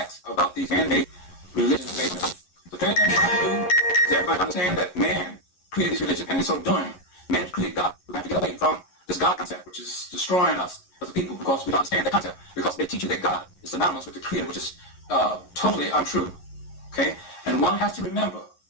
about these man-made religions based on. The third thing we have to do is everybody understand that man created these religions, and in so doing, man created God. We have to get away from this God concept, which is destroying us as a people, because we don't understand that concept, because they teach you that God is synonymous with the Creator, which is totally untrue. Okay? And one has to remember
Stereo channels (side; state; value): right; late; 11 ms